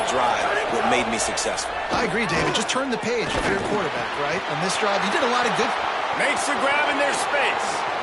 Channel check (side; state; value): both; identical; correlation 1.00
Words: drive, what made me successful. I agree, David. Just turn the page if you're a quarterback, right? On this drive, you did a lot of good. Makes the grab in their space.